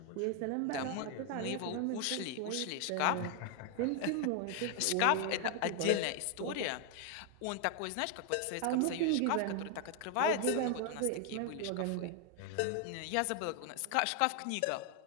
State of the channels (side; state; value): both; different; correlation 0.00